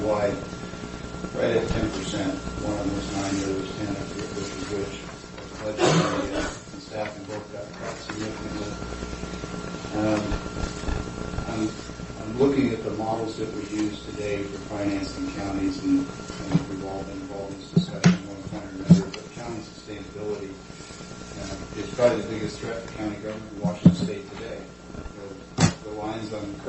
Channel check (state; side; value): identical; both; correlation 1.00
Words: right at 10%. One of them was 9, the other was 10, I forget which is which. Budget and staffing both got cut significantly. I'm looking at the models that we use today for financing counties, and we've all been involved in this discussion one point or another, but county sustainability is probably the biggest threat to county government in Washington State today. The lines on the